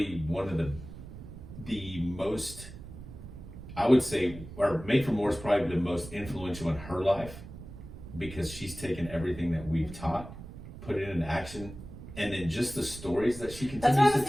one of the most, I would say, or Made for More is probably the most influential in her life, because she's taken everything that we've taught, put it into action, and then just the stories that she That's continues what I was to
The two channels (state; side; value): noise; right; rumble, 13 dB below the sound